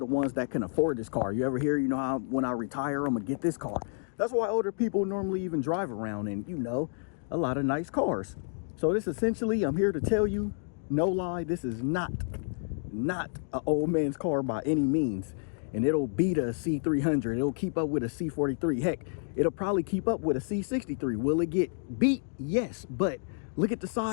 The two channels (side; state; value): right; silent; digital silence